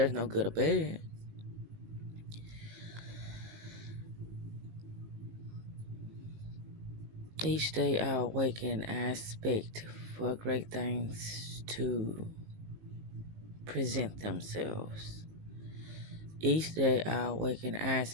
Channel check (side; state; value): left; late; 19 ms